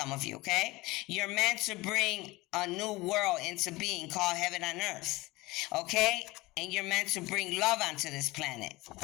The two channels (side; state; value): right; quieter; 21.1 dB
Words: of you, okay? You're meant to bring a new world into being called heaven on earth, okay? And you're meant to bring love onto this planet